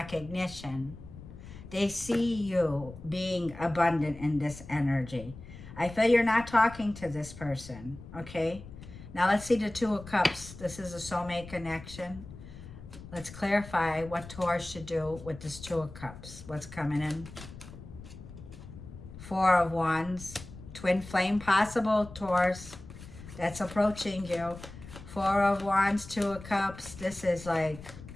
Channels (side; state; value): left; noise; rumble, 15 dB below the sound